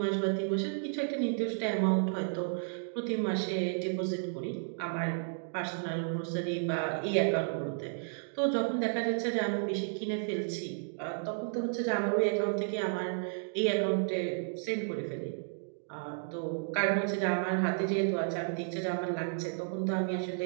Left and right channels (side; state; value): left; silent; digital silence